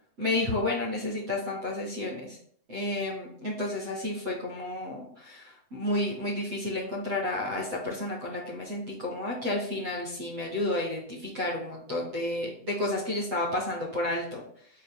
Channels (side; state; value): left; late; 7.9 ms